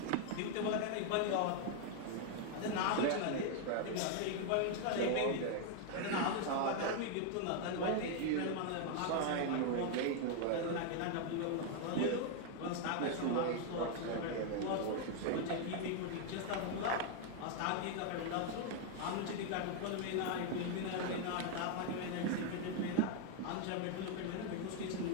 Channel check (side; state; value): both; different; correlation 0.00